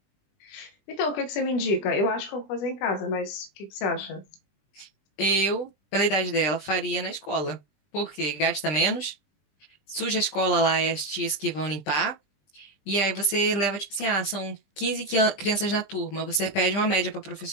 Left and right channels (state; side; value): late; right; 20 ms